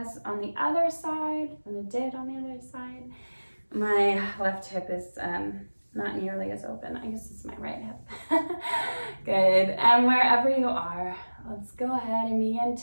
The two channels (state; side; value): inverted; both; correlation -1.00